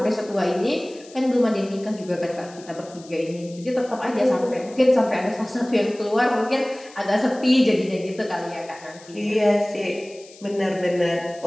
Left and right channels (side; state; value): left; noise; hiss, 22 dB below the sound